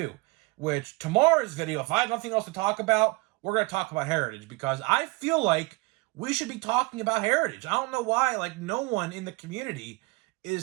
which tomorrow's video, if I have nothing else to talk about, we're going to talk about Heritage, because I feel like we should be talking about Heritage. I don't know why, no one in the community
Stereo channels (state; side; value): quieter; left; 25.5 dB